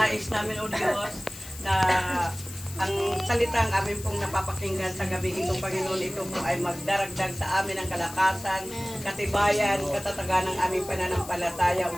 namin, O Diyos, na ang salitang amin pong napapakinggan sa gabi ito, Panginoon, ito po ay magdaragdag sa amin ang kalakasan, katibayan, katatagan ng aming pananampalataya, O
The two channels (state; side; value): noise; left; hiss, 14 dB below the sound